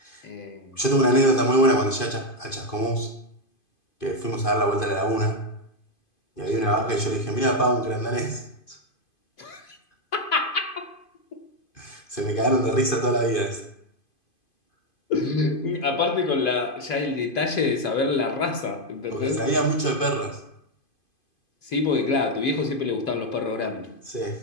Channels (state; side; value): late; right; 2.5 ms